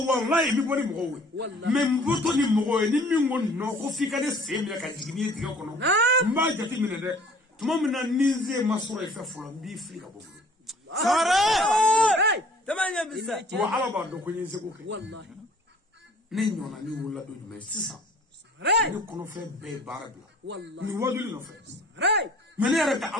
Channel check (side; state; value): both; normal; correlation 0.52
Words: wallahi mi boni mo we me mboto ni mo we ni mi ngon no ko fika de semle ka jigini diga kono mba jati mine de tuma mina nize masoro ife fulo bi frika bobu sangare tamanya bisa wa ala ba do ko nyi se ko wallahi نينونا ني ولا دو جمع سيسا ني كونو في بي باربلا والله ني وادولي نو في راي من يرك